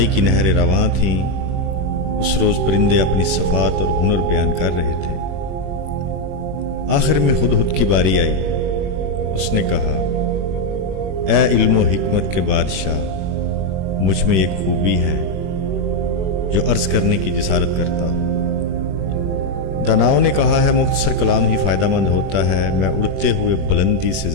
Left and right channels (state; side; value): late; left; 21 ms